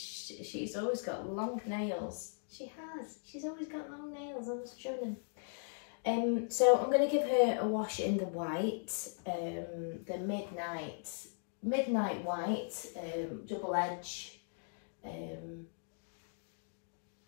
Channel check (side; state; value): right; silent; digital silence